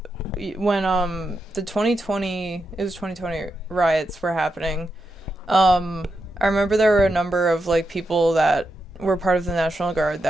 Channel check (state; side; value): normal; both; correlation 0.86